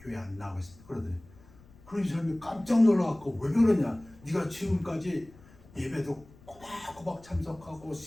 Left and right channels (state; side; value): noise; left; rumble, 24 dB below the sound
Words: 안 나오겠습니다. 그러더니 그런 사람이 깜짝 놀라갖고 왜 그러냐? 네가 지금까지 예배도 꼬박꼬박 참석하고